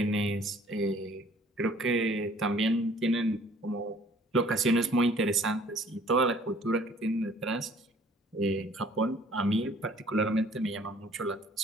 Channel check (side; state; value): both; normal; correlation 0.55